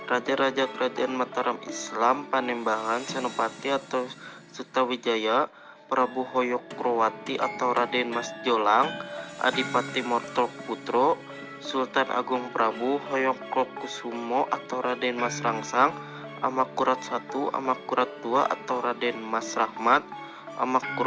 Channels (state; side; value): identical; both; correlation 1.00